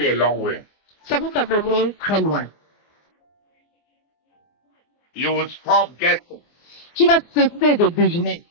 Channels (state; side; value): late; right; 24 ms